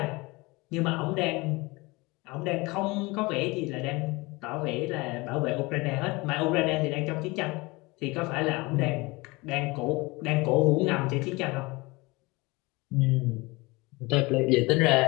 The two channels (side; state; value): right; quieter; 24.0 dB